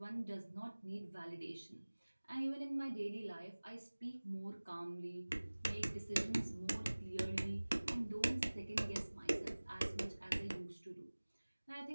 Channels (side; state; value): both; inverted; correlation -1.00